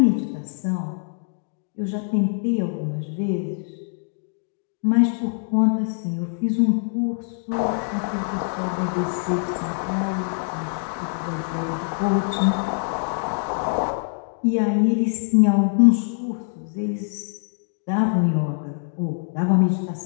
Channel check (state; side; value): silent; right; 63 dB below the other